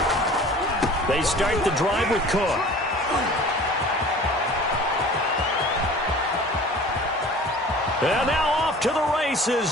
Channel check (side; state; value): both; normal; correlation 0.44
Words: They start the drive with Cook. And now off to the